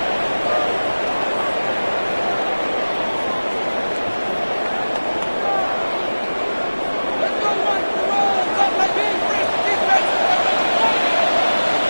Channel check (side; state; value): both; inverted; correlation -1.00